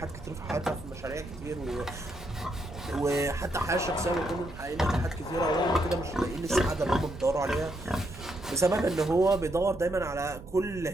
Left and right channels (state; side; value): normal; both; correlation 0.77